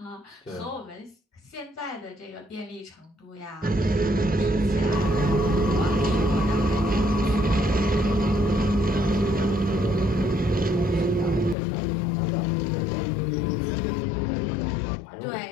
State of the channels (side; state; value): right; drops out; at 11.6 s